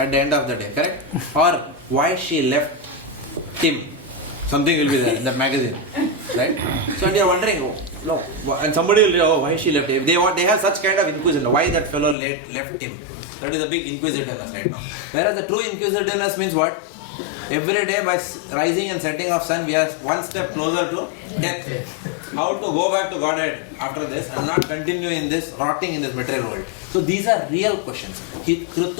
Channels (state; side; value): drops out; right; at 12.2 s